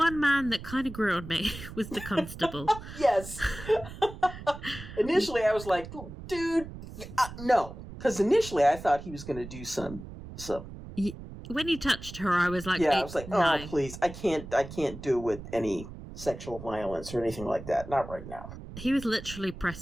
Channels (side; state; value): right; noise; rumble, 13 dB below the sound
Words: man that kind of grew on me was the constable. Yes. Initially, I was like, dude, no. Because initially, I thought he was going to do some. When he touched her, I was like, I was like, no, please, I can't do with any sexual violence or anything like that. Not right now. He was literally